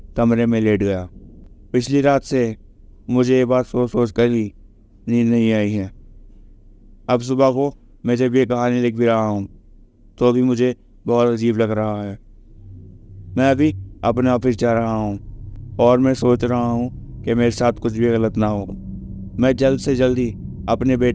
गया। पिछली रात से मुझे ये बात सोच कर ही नींद नहीं आई है। अब सुबह को मैं जब ये कहानी लिख भी रहा हूँ तो भी मुझे बहुत अजीब लग रहा है। मैं अभी अपने ऑफिस जा रहा हूँ और मैं सोच रहा हूँ कि मेरे साथ कुछ भी गलत ना हो। मैं जल्द से जल्द ही अपने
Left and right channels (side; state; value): both; identical; correlation 1.00